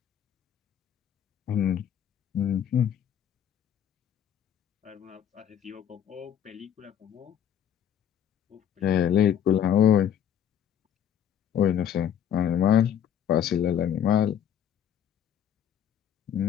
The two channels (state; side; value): quieter; right; 9.4 dB